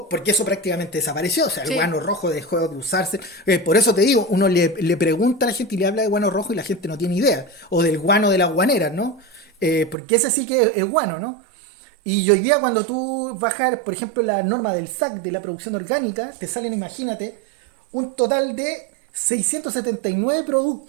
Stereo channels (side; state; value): left; drops out; at 10.0 s